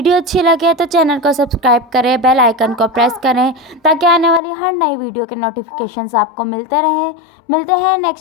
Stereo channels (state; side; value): drops out; right; at 4.4 s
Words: अच्छी लगे तो चैनल को सब्सक्राइब करें, बेल आइकन को प्रेस करें ताकि आने वाली हर नई वीडियो के नोटिफिकेशंस आपको मिलते हैं